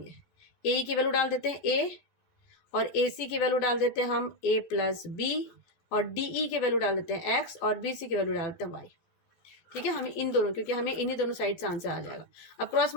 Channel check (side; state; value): right; late; 12 ms